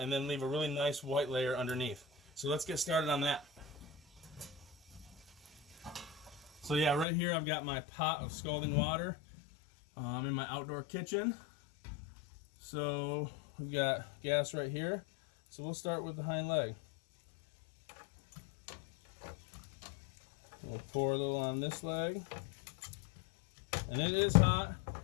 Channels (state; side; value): drops out; right; at 7.1 s